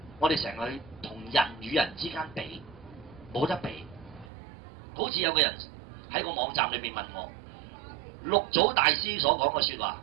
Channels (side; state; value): left; drops out; at 4.3 s